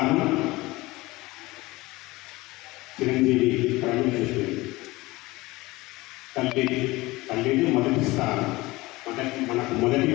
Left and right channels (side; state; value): right; quieter; 20.7 dB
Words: చిరంజీవి ప్రవీణ్ చెప్పింది. తల్లిని మొదటి స్థానం. మనకు మొదటి